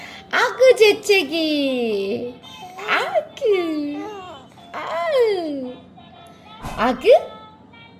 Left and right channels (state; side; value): identical; both; correlation 1.00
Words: 아그 재채기. 아그. 아으. 아그?